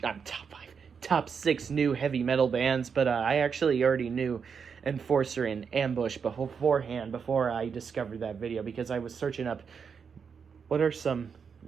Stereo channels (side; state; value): left; quieter; 6.3 dB